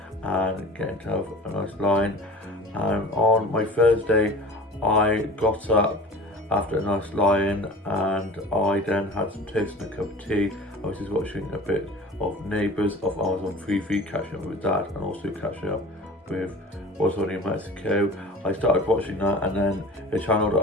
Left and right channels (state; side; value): normal; both; correlation 0.39